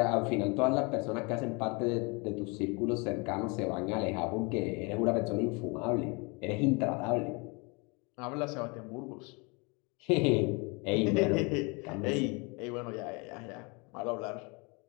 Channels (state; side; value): quieter; right; 30.0 dB